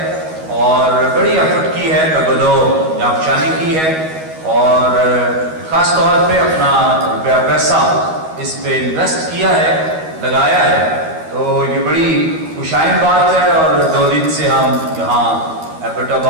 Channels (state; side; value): late; left; 13 ms